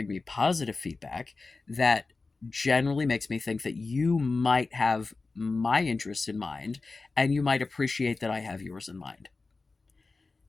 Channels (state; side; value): quieter; right; 3.8 dB